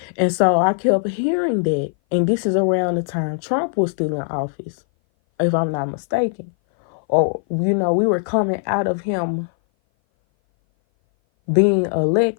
And so I kept hearing that. And this is around the time Trump was still in office, if I'm not mistaken. Or, we were coming out of him being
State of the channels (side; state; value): right; silent; 58 dB below the other